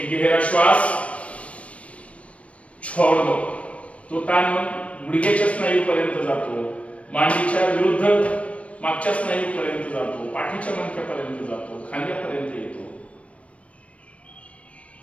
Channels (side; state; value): right; late; 0.063 ms